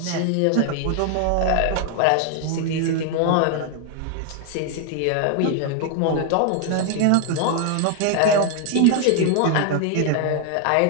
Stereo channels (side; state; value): both; different; correlation 0.00